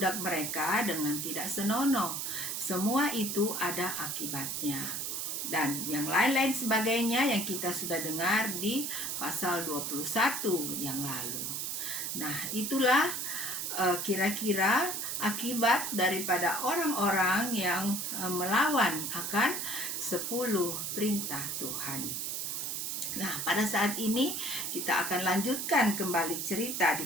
mereka dengan tidak senonoh, semua itu ada akibatnya. Dan yang lain-lain sebagainya yang kita sudah dengar di pasal 21 yang lalu. Nah, itulah kira-kira akibat daripada orang-orang yang melawan akan 10 perintah Tuhan. Nah, pada saat ini kita akan lanjutkan kembali cerita di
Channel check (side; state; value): right; noise; hiss, 2 dB below the sound